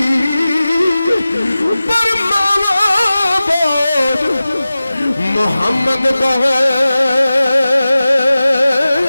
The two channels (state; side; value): inverted; both; correlation -0.96